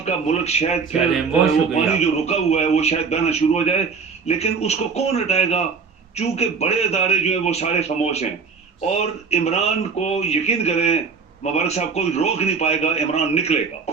मुल्क शायद फिर वो पानी जो रुका हुआ है वो शायद बहना शुरू हो जाए। लेकिन उसको कौन हटाएगा? चूंकि बड़े अदारे जो है वो सारे खामोश हैं, और इमरान को यकीन करें मुबारक साहब कोई रोक नहीं पाएगा, इमरान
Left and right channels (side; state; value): left; quieter; 5.2 dB